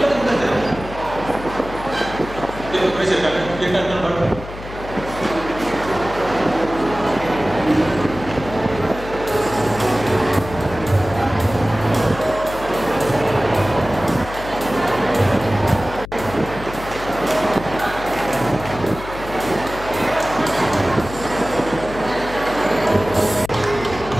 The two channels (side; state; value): left; noise; hum, 12 dB below the sound